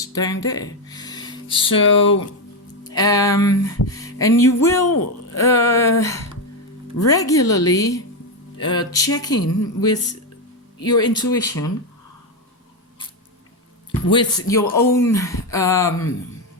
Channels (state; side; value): normal; both; correlation 0.08